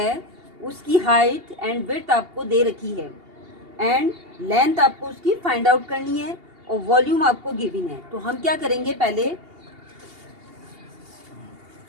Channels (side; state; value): left; late; 2.8 ms